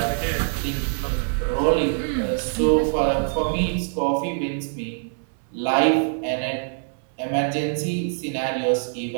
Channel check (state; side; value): silent; left; digital silence